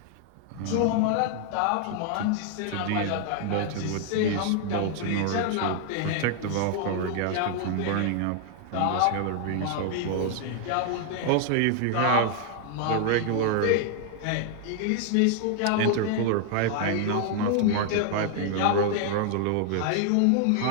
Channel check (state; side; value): different; both; correlation 0.00